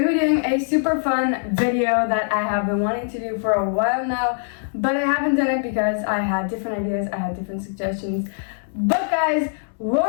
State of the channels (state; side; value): silent; right; digital silence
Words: to be doing a super fun video that I have been wanting to do for a while now, but I haven't done it because I had different ideas, I had different suggestions. But guys, what